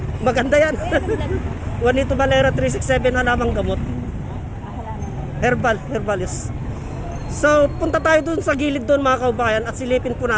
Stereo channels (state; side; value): identical; both; correlation 1.00